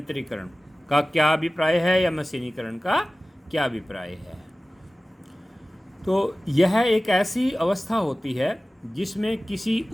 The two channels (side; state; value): both; normal; correlation 0.97